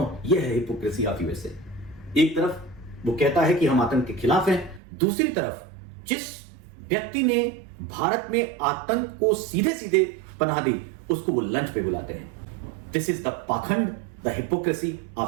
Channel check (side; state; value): left; drops out; at 4.8 s